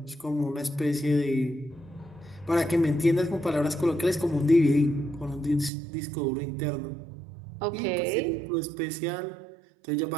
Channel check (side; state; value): left; drops out; at 5.7 s